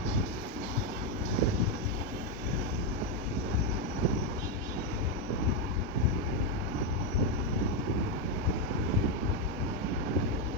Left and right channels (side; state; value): both; normal; correlation 0.04